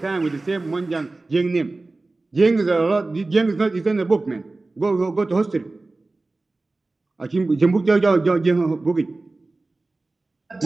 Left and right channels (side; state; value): left; quieter; 3.2 dB